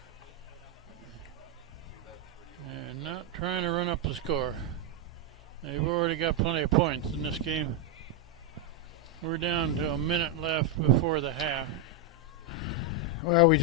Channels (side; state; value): both; normal; correlation 0.02